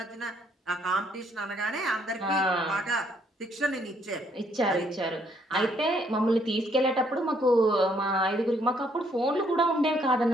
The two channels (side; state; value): both; normal; correlation 0.68